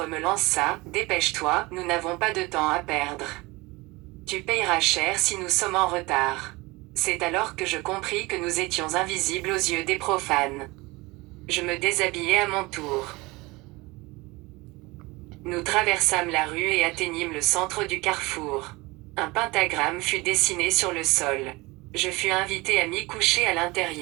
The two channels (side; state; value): left; quieter; 22.8 dB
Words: me lança, dépêche-toi, nous n'avons pas de temps à perdre. Tu payeras cher si nous sommes en retard. C'est alors que je compris que nous étions invisibles aux yeux des profanes. Je me déshabillai à mon tour. Nous traversâmes la rue et atteignîmes le centre du carrefour. Un pentagramme fut dessiné sur le sol. Je fus invité à m'y coucher à